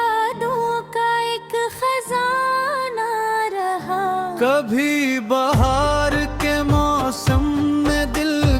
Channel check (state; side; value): identical; both; correlation 1.00